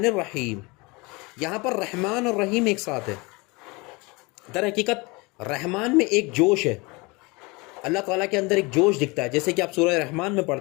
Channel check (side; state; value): right; quieter; 26.1 dB